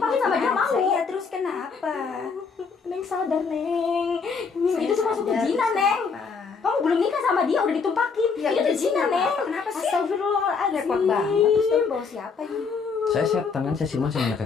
sama dia mau? Iya, terus kenapa? Neng sadar, Neng. Neng, itu tuh masuk ke Sadar, zina, terus Neng. kenapa? Kamu belum nikah sama dia, udah ditumpakin. Ya, itu udah zina, zina, Neng. kenapa sih? Astagfirullahaladzim. Repot banget. Terus kamu bawa siapa ini? Saya setan kan, saya siluman, saya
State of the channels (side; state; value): right; quieter; 5.2 dB